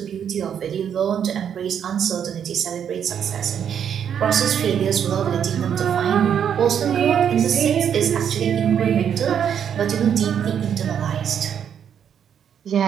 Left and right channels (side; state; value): left; quieter; 8.4 dB